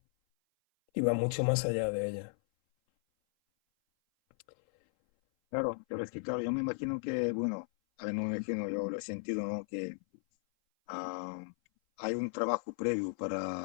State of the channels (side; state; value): right; silent; 54 dB below the other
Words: Y va mucho más allá de ella. Claro, pero es que, claro, yo me imagino que, bueno, a ver, no me imagino, yo lo he sentido, ¿no? Que ah, hay un trabajo previo